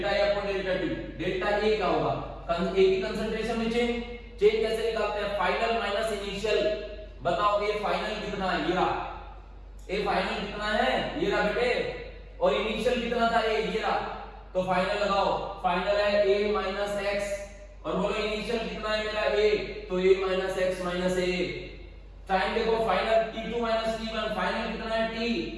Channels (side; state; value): both; identical; correlation 1.00